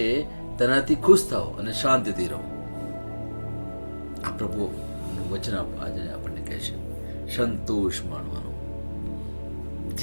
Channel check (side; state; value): both; inverted; correlation -1.00